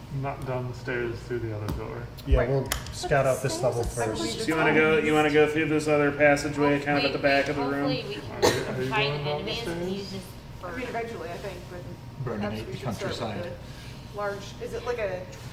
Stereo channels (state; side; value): identical; both; correlation 1.00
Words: Not down the stairs through the other door. Yeah, Right. we'll scout out this level Stairs are first. So you want to go through this other passageway, kind of at the back of the room. Hopefully we Are can you find going down the enemies and stairs? use this for. I mean, eventually, I think, but Burning perhaps we the should start with countryside. the large. Is it like a